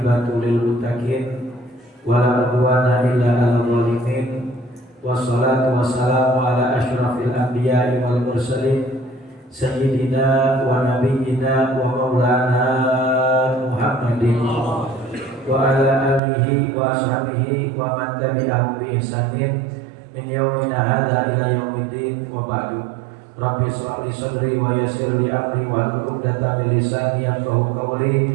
lil muttaqin, wala udwana illa 'alal zalimin. Wassalatu wassalamu ala asyrafil anbiya'i wal mursalin, sayyidina wa nabiyyina wa maulana Muhammadin wa ala alihi wa ashabihi wa man tabi'ahum bi ihsanin min yaumina hadza ila yaumiddin, wa ba'du. Rabbi shrah li sadri wa yassir li amri wahlul 'uqdatam min lisani yafqahu qawli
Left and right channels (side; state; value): left; drops out; at 16.2 s